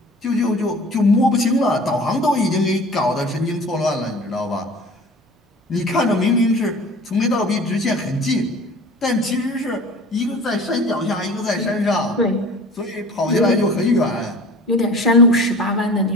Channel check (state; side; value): normal; both; correlation 0.43